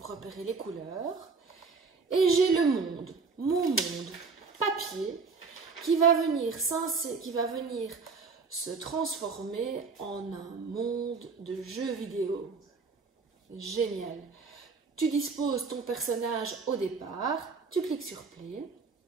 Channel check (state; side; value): quieter; left; 4.7 dB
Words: repérer les couleurs. Et j'ai le monde, mon monde papier, qui va venir se transformer en un monde de jeux vidéo. Génial. Tu disposes ton personnage au départ, tu cliques sur Play.